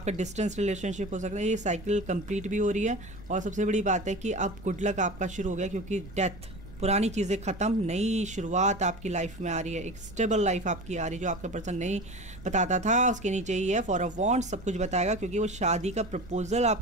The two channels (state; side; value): noise; right; rumble, 17 dB below the sound